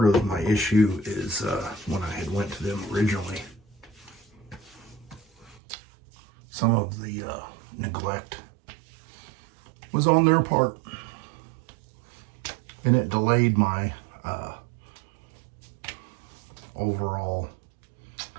of my issue is when I had went to them originally, some of the neglect was on their part, and it delayed my overall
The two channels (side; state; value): left; drops out; at 5.6 s